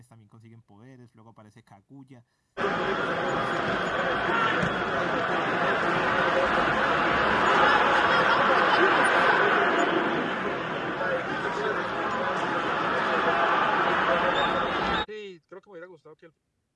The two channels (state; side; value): identical; both; correlation 1.00